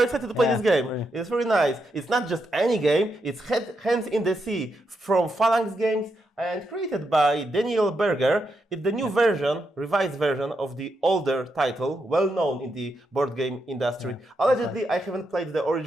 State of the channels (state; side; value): normal; both; correlation 0.82